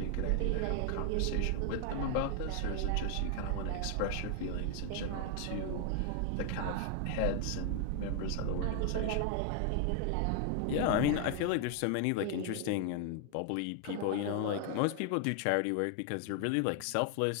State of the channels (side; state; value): both; different; correlation 0.00